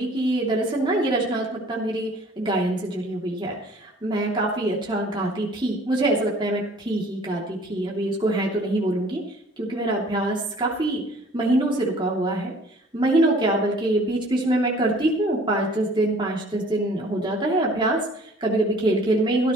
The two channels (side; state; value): both; normal; correlation 0.52